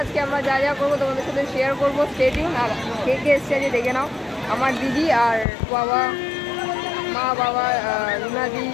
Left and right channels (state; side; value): drops out; right; at 5.5 s